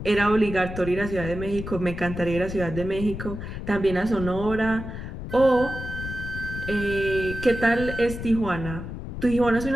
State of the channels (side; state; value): left; noise; rumble, 8 dB below the sound